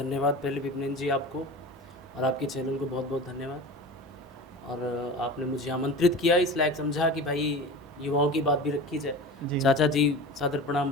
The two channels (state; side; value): normal; both; correlation 0.33